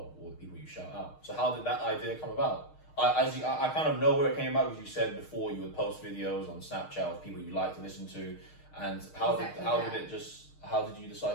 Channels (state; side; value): late; right; 6.5 ms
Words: or the people you shout out. So how did that idea come about? I kind of know where it came about, because you said before you would post videos on Snapchat of people you like to listen to, and how did you